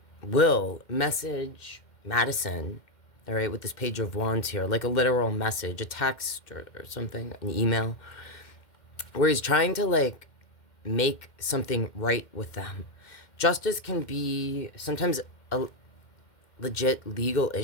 will message Madison, all right, with this Page of Wands here, like a literal message, a text or something, an email, where he's trying to, like, make something right with them. Justice can be sometimes a legit legal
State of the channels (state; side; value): late; right; 2.1 ms